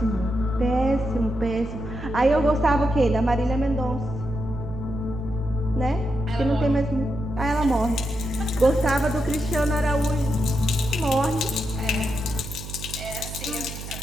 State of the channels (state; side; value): noise; right; hum, 10 dB below the sound